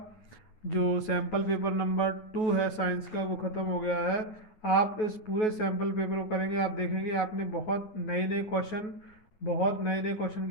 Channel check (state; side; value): late; right; 9.3 ms